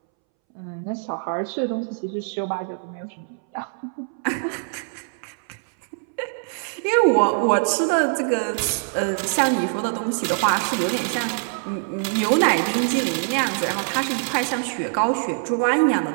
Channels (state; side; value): silent; left; 63 dB below the other